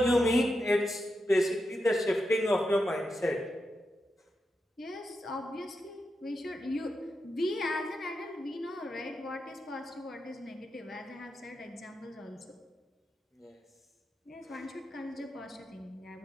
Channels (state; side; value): normal; both; correlation 0.87